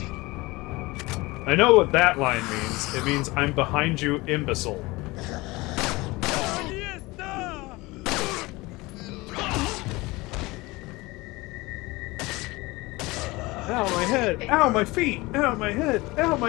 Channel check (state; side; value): quieter; right; 22.1 dB